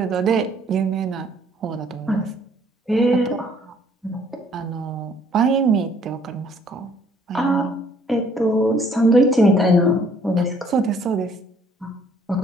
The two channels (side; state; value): both; normal; correlation 0.62